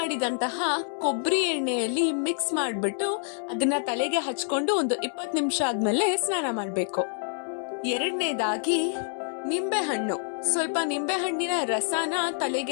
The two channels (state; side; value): silent; right; 60 dB below the other